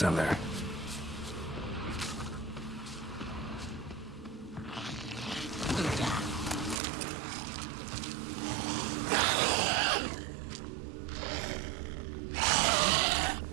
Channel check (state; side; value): drops out; left; at 6.8 s